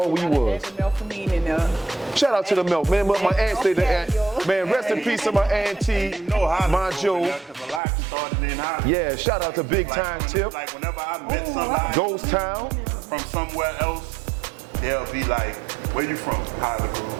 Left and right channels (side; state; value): left; drops out; at 7.8 s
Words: we was. Shout out to the milk, man. My aunt stayed there. Man, rest in peace to my auntie, my Joe. Yeah, shout out to Big Time Tip. Like whenever I met somebody Ghost Town from somewhere else, they'll be like, "Where you from?"